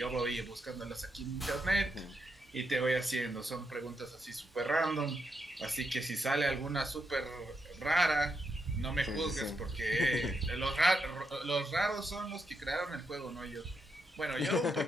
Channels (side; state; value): both; normal; correlation 0.82